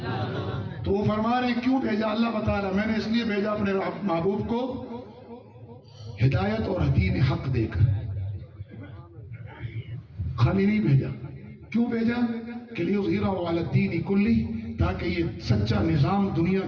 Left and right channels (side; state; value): both; identical; correlation 1.00